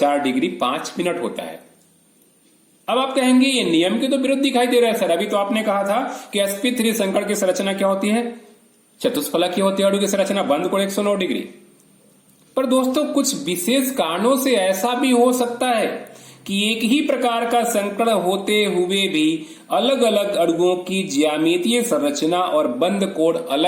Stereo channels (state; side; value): identical; both; correlation 1.00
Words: डिग्री 5 मिनट होता है। अब आप कहेंगे ये नियम के तो विरुद्ध दिखाई दे रहा है सर, अभी तो आपने कहा था कि sp3 संकड़ की संरचना क्या होती है, चतुष्फलकीय होती है अणु की संरचना, बंद कोण 109 डिग्री। पर दोस्तों कुछ विशेष कारणों से ऐसा भी हो सकता है कि एक ही प्रकार का संकड़ होते हुए भी अलग अलग अणुओं की ज्यामितीय संरचना और बंद कोण